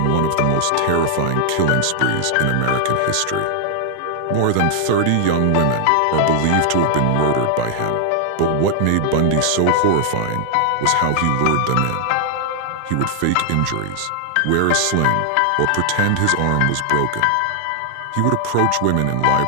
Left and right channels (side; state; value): both; different; correlation 0.00